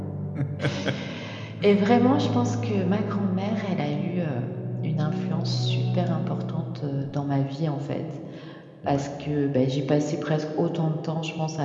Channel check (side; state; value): both; identical; correlation 1.00